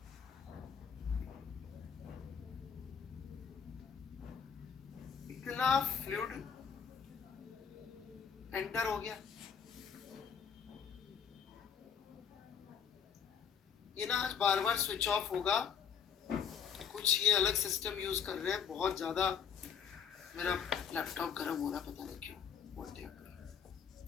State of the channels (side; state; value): right; quieter; 7.4 dB